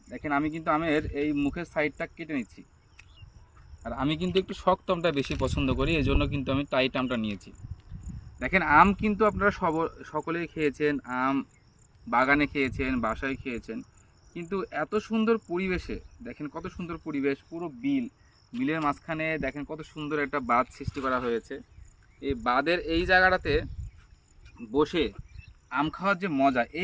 দেখেন, আমি কিন্তু আমের এই মুখের সাইডটা কেটে নিচ্ছি। আর আমি কিন্তু একটু শক্ত আমটা বেশি পছন্দ করি, এই জন্য কিন্তু আমি টাইট আমটা নিয়েছি। দেখেন, আম কিন্তু আপনারা সকলেই খেয়েছেন, আম বাগানে খেয়েছেন, বাসায় খেয়েছেন, কিন্তু এত সুন্দর পরিবেশে দেখেন, কত সুন্দর পরিবেশ, পুরো বিলের মাঝখানে দেখেন কত সুন্দর একটা বাঁধ সৃষ্টি করা হয়েছে। এই বাঁধের এই জায়গাটাতে বসে আম খাওয়ার যে মজা,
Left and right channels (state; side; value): identical; both; correlation 1.00